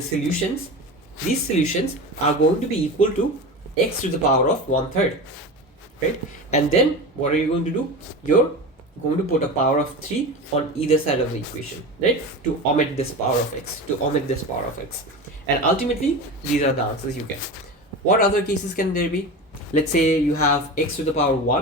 solutions, these solutions are going to be equal to x to the power of 1/3, right? And then what are you going to do? You're going to put a power of 3 on either side of the equation, right? To omit this power of x, And ultimately, these are the answers you get. What other cases can there be? Let's say you have x to the power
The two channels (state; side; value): normal; both; correlation 0.28